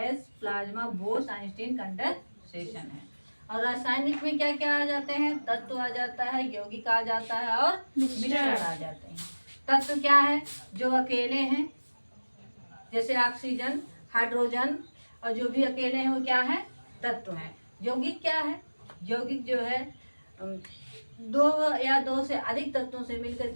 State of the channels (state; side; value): inverted; both; correlation -1.00